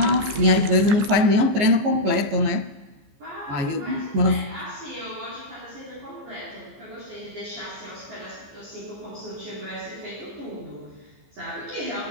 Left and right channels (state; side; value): late; left; 15 ms